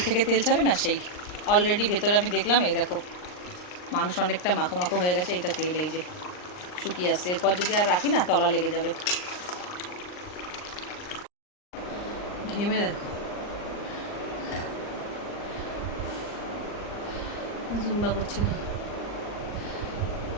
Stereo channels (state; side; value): late; right; 39 ms